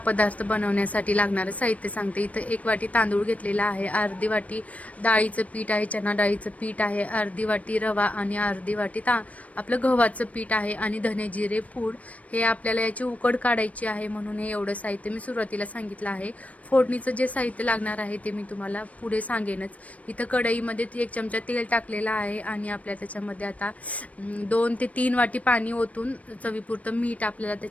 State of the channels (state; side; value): late; right; 0.067 ms